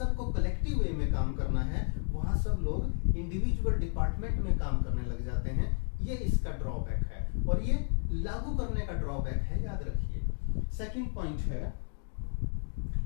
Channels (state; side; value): silent; right; 56 dB below the other